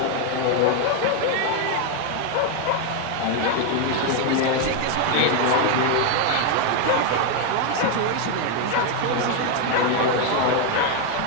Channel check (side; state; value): both; different; correlation 0.01